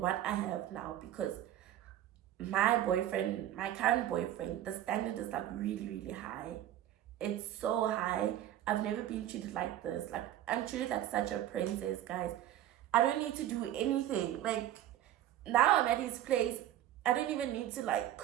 I have now, because my boyfriend, my current boyfriend, the standard is like really, really high. It's so high. I've never been treated like this. Like, I'm treated like such a princess, guys. I don't need to do anything. Like, now I'm at his place. I don't even need to like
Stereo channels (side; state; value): left; quieter; 12.4 dB